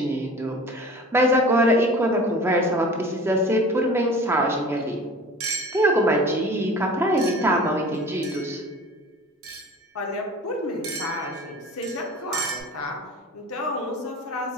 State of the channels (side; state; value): both; normal; correlation 0.41